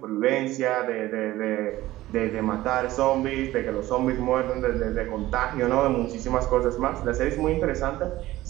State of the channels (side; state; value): left; quieter; 16.4 dB